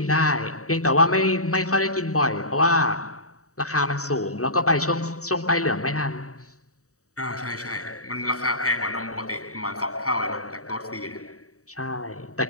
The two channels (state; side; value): late; right; 0.65 ms